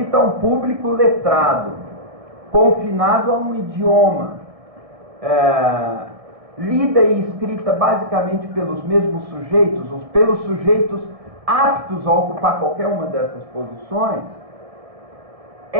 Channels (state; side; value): late; left; 1.7 ms